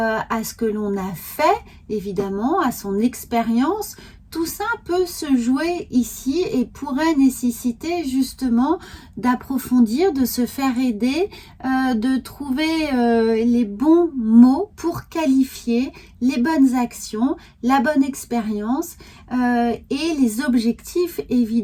ce que l'on a fait, évidemment, à son expérience? Tout ça peut se jouer ici et pourrait nécessiter justement d'approfondir, de se faire aider, de trouver les bons mots pour qualifier les bonnes actions, la bonne expérience et les objectifs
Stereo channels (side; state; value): both; identical; correlation 1.00